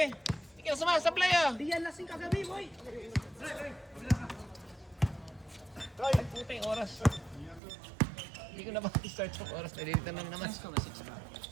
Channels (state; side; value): drops out; left; at 7.6 s